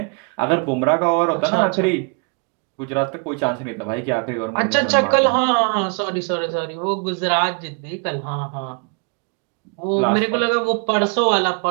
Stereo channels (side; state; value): left; quieter; 37.0 dB